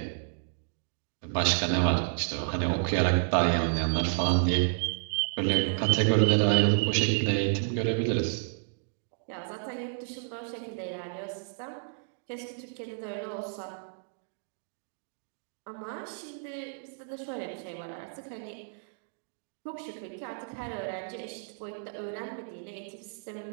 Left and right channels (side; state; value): left; silent; digital silence